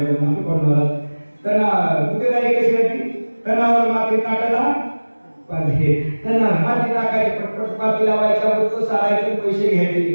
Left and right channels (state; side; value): inverted; both; correlation -1.00